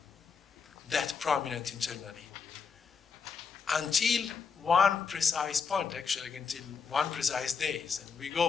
that prominent internally until one precise point, actually until one precise days. And we go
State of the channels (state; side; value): quieter; right; 5.8 dB